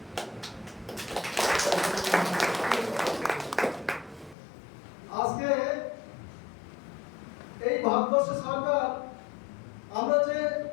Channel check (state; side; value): drops out; right; at 4.4 s